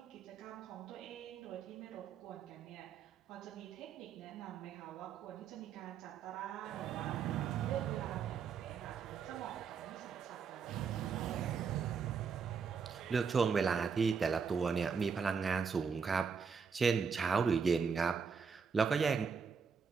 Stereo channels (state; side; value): quieter; left; 6.0 dB